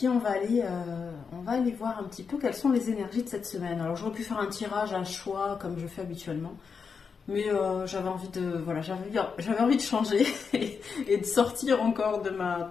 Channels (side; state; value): right; quieter; 5.7 dB